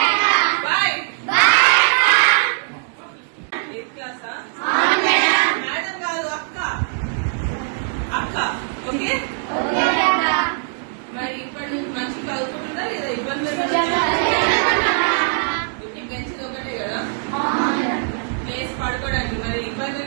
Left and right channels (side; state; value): left; silent; 65 dB below the other